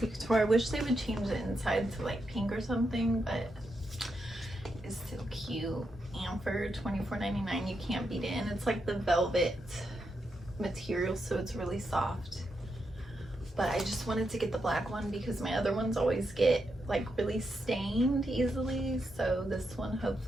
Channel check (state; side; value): normal; both; correlation 0.83